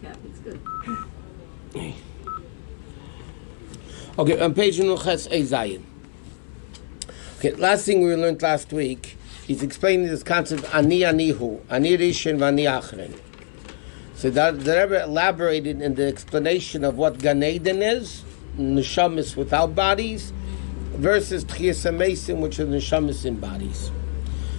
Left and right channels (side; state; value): right; silent; 63 dB below the other